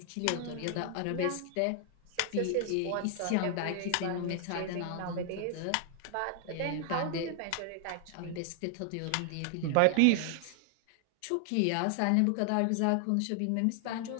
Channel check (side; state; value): both; different; correlation 0.00